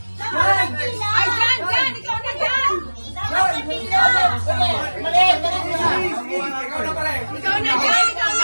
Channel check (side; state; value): both; inverted; correlation -1.00